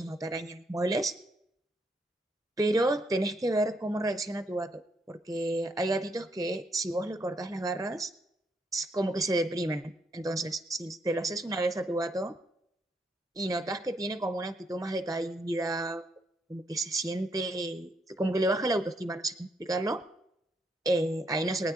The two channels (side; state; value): both; normal; correlation 0.75